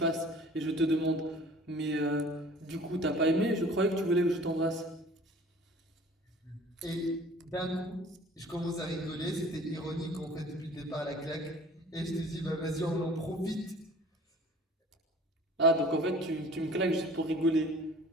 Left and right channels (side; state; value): both; normal; correlation 0.48